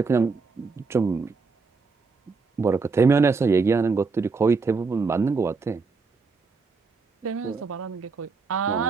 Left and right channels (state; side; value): quieter; left; 4.5 dB